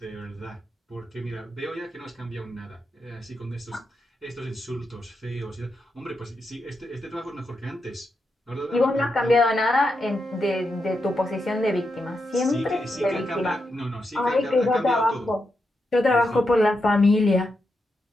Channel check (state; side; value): normal; both; correlation 0.85